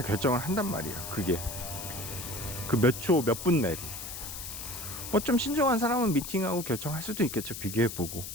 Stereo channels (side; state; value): left; noise; hiss, 8 dB below the sound